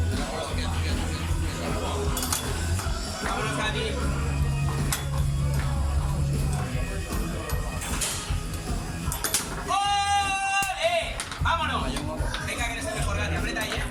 Vámonos, Gatti. ¡Ole! ¡Vámonos! Venga, que eres el mejor, Gatti. Aprieta ahí,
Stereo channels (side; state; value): both; identical; correlation 1.00